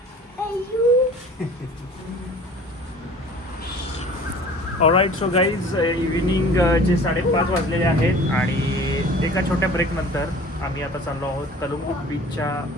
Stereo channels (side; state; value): both; normal; correlation 0.46